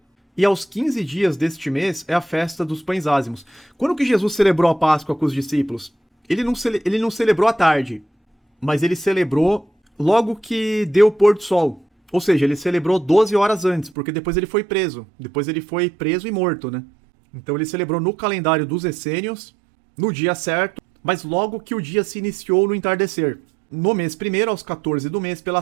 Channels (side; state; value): left; drops out; at 14.0 s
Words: E aos 15 dias deste mês é a festa dos pães ázimos. Quando que Jesus celebrou a Páscoa com os discípulos? Ele não celebrou à tarde, mas ele celebrou logo que deu o pôr do sol. Ou seja, ele celebrou 12 horas antes, porque depois ele foi preso. Depois ele foi preso e morto, né? Então ele celebrou no calendário dos essênios, no dia certo, mas logo que o dia se iniciou no entardecer. No mês primeiro, aos 14 do mês, pela